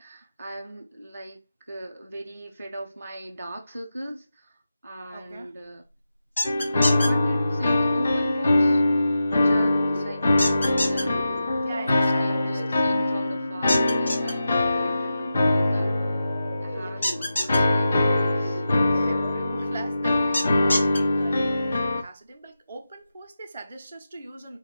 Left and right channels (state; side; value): inverted; both; correlation -0.91